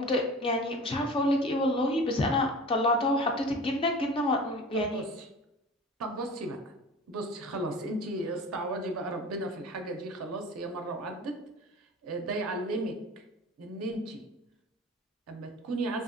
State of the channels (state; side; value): normal; both; correlation 0.38